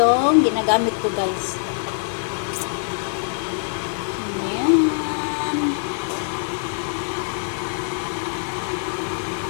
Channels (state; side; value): silent; right; digital silence